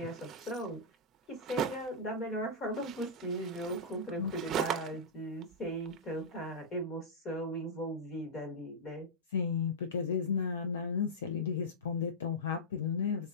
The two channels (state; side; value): normal; both; correlation -0.10